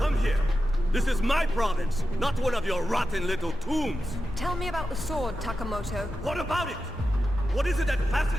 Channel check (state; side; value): normal; both; correlation 0.91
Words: here. This is my province, not one of your rotten little tombs. Tell me about the sword, Takamoto. What about it? What is it that